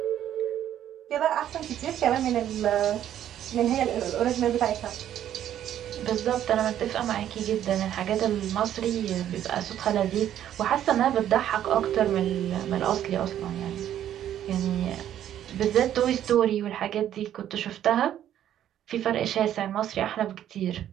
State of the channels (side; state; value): left; quieter; 11.0 dB